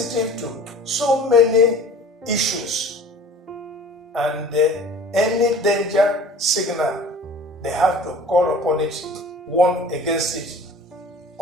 to so many issues, and any danger signal, they have to call upon it, warn against it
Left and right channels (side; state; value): both; normal; correlation 0.44